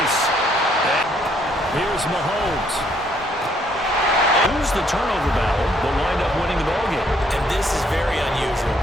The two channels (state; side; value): normal; both; correlation 0.68